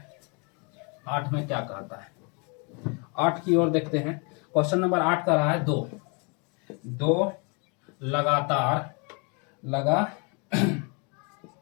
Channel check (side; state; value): right; quieter; 33.8 dB